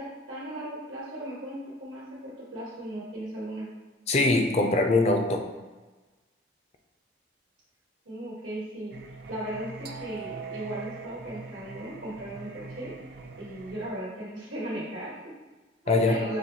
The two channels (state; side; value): normal; both; correlation 0.45